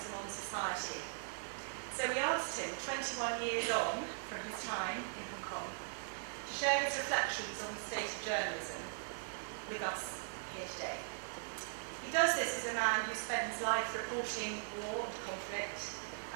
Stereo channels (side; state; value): left; silent; digital silence